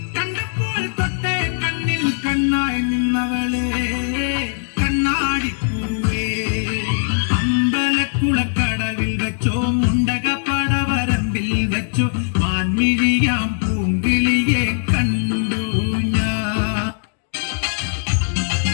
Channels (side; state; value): right; silent; digital silence